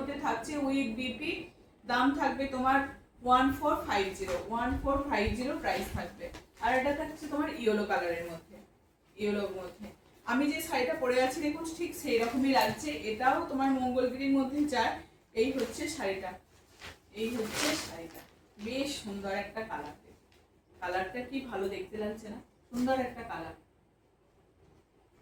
থাকছে উইথ বিপি। দাম থাকবে তোমার 1450 প্রাইস থাকবে। আর এটা থাকছে তোমার ইয়েলো কালারের মধ্যে, ইয়েলোর মধ্যে। আমি যে শাড়িটা পরে আছি দেখুন ঠিক সেই রকমই লাগছে, এটাও তোমার মঙ্গলগিরির মধ্যে যায়। এই হচ্ছে শাড়িটা, এই হচ্ছে শাড়িটা, বেশ সুন্দর একটা কালার। কালারটা কি ভালো দেখতে লাগছে না, সুন্দর একটা কালার।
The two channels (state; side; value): identical; both; correlation 1.00